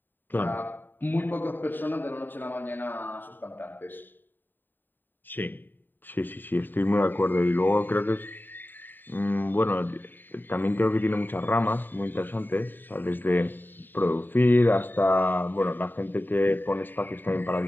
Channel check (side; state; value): right; late; 0.092 ms